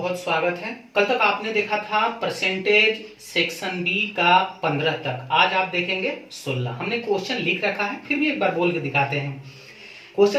स्वागत है। कल तक आपने देखा था परसेंटेज सेक्शन बी का 15 तक, आज आप देखेंगे 16। हमने क्वेश्चन लिख रखा है, फिर भी एक बार बोल के दिखाते हैं।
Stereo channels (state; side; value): identical; both; correlation 1.00